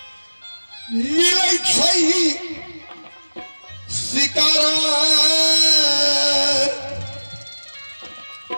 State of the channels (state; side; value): inverted; both; correlation -1.00